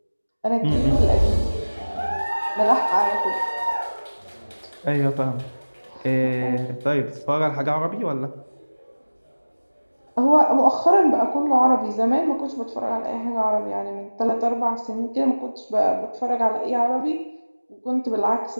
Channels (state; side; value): inverted; both; correlation -1.00